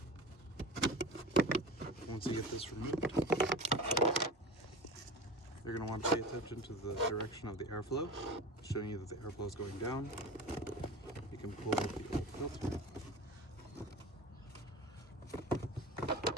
Once you get this removed, you're going to want to pay attention to the direction of the airflow, showing you that the airflow is going down. You can pull out the old filter.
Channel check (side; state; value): both; normal; correlation 0.33